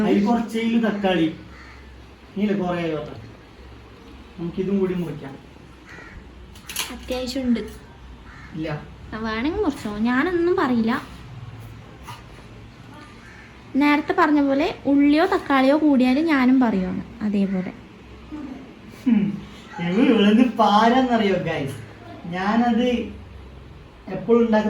അതിൽ കുറച്ച് തക്കാളി നീല കുറേ നമുക്കിതും കൂടി മുറിക്കാം. അത്യാവശ്യം ഉണ്ട്. ഇല്ല, വേണമെങ്കിൽ മുറിച്ചോ, ഞാനൊന്നും പറയില്ല. നേരത്തെ പറഞ്ഞ പോലെ ഉള്ളിയോ തക്കാളിയോ കൂടിയാലും ഞാനും പറയുവാണ് അതേപോലെ. ഇവളെന്ത് പാരാന്നറിയോ ഗൈസ്, ഞാനത് എപ്പോഴും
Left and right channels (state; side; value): identical; both; correlation 1.00